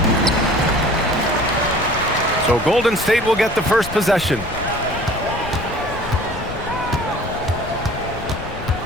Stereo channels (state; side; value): noise; left; rumble, 11 dB below the sound